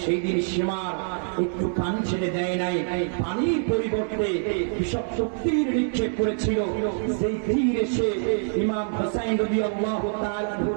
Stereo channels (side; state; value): left; silent; 60 dB below the other